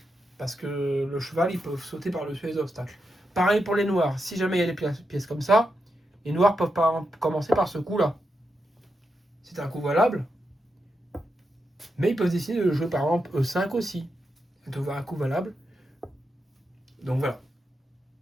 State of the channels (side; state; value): both; normal; correlation 0.86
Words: Parce que le cheval, il peut sauter par-dessus les obstacles. Pareil pour les noirs. Si jamais il y a des pièces comme ça, les noirs peuvent pas commencer par ce coup-là. C'est un coup valable. Mais ils peuvent décider de jouer par exemple E5 aussi. De voir un coup valable. Donc voilà.